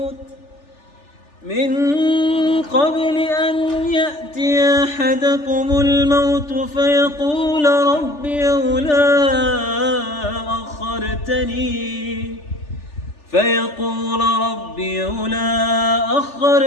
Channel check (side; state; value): right; late; 3.4 ms